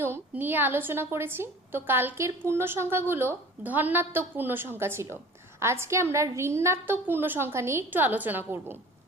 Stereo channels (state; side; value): normal; both; correlation 0.44